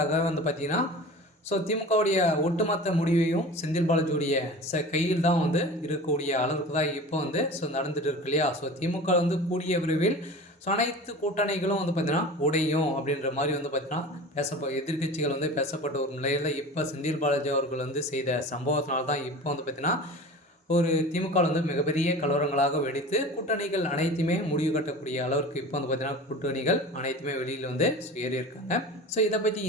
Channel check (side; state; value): both; normal; correlation 0.36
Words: பார்த்தீங்கன்னா திமுகவுடைய ஒட்டுமொத்த முடிவையும் செந்தில் பாலாஜியுடைய கையில் தான் இருக்கக்கூடிய அளவுக்கு தான் இப்போ நடந்துட்டு இருக்கு இல்லையா. திமுக கூடிய விரைவில் அனைத்து கூட்டணிகளும் பார்த்தீங்கன்னா உடையும் அப்படின்ற மாதிரி பார்த்தீங்கன்னா எதிர்கட்சிகள் பேசப்பட்ட ஒரு நிலையில் இப்போ செந்தில் பாலாஜி அவர்கள் செய்த சம்பவத்தினால தான் இப்போ பார்த்தீங்கன்னா ஒரு திமுக மிகப்பெரிய கலவரங்களாக வெடித்து கூட்டணிகள் அனைத்துமே முடிவு கட்டக்கூடிய அளவிற்கு இப்போ பார்த்தீங்கன்னா கூட்டணிகள் அனைத்துமே வெளியில் ஏறி இருக்காங்க. இதை பற்றி